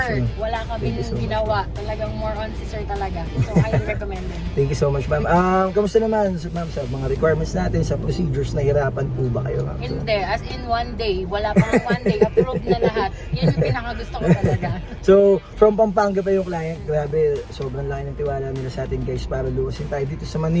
ma'am. Wala Thank you kaming so much, ginawa. Talagang more on si sir talaga. So, highly recommended. Thank you so much, ma'am. Kamusta naman, ma'am, sa mga requirements natin, sa procedures, nahirapan po ba kayo, ma'am? Hindi. As in, one day. Wala pang one day. Approved na lahat. Yan yung pinakagusto ko talaga. So, from Pampanga pa yung client. Grabe, sobrang laki ng tiwala nila sa atin guys para luwasin tayo dito sa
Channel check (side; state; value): both; identical; correlation 1.00